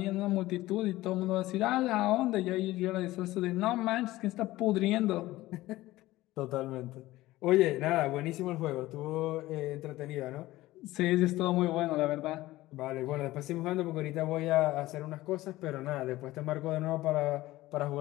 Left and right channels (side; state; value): right; quieter; 17.3 dB